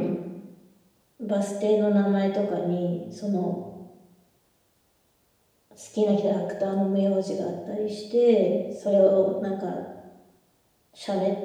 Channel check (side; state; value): both; identical; correlation 1.00